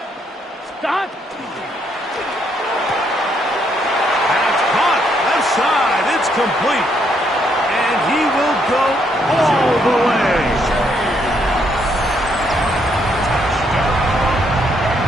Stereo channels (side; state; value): both; normal; correlation 0.73